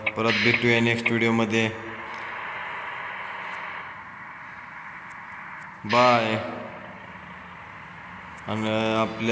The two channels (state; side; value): identical; both; correlation 1.00